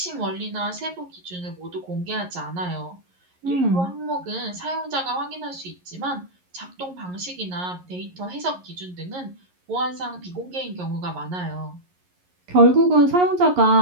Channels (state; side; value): late; left; 11 ms